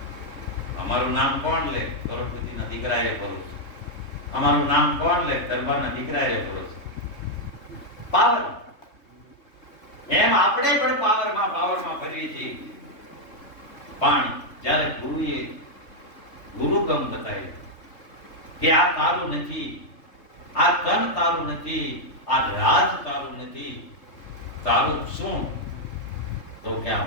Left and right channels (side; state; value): right; late; 3.3 ms